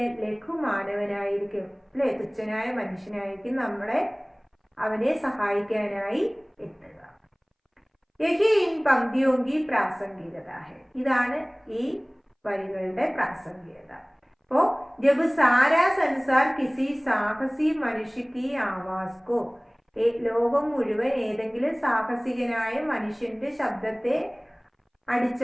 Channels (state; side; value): identical; both; correlation 1.00